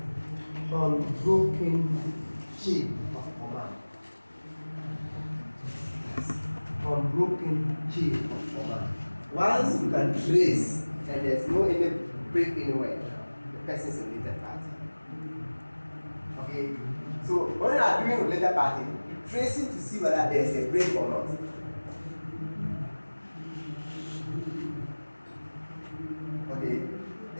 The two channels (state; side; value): inverted; both; correlation -1.00